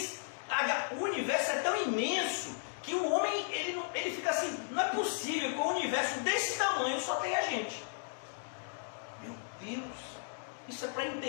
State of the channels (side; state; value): right; silent; digital silence